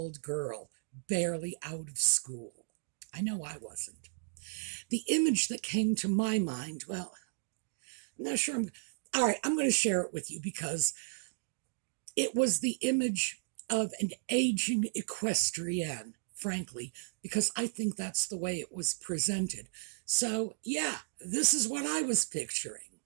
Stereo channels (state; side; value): silent; left; digital silence